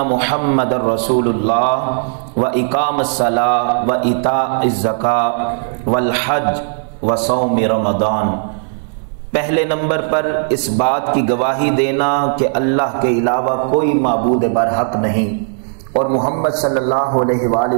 محمد رسول اللہ واقام الصلاۃ وایتاء الزکاۃ والحج وصوم رمضان۔ پہلے نمبر پر اس بات کی گواہی دینا کہ اللہ کے علاوہ کوئی معبود برحق نہیں اور محمد صلی اللہ علیہ وآلہ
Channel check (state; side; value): silent; left; digital silence